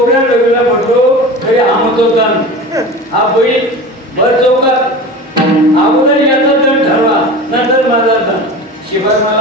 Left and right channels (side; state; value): both; normal; correlation 0.33